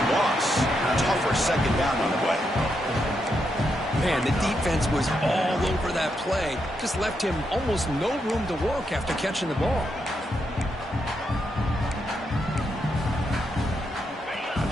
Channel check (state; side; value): normal; both; correlation 0.82